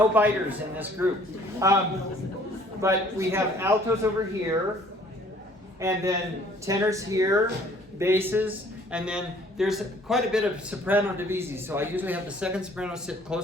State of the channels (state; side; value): normal; both; correlation 0.57